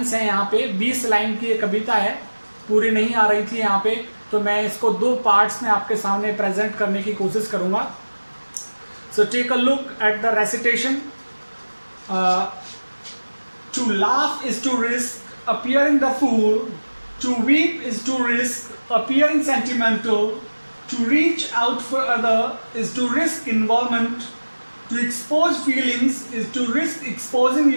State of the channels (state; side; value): inverted; both; correlation -1.00